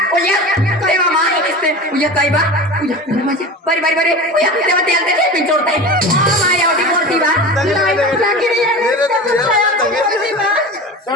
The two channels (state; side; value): normal; both; correlation 0.31